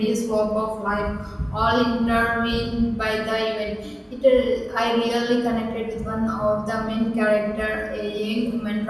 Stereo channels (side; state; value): both; identical; correlation 1.00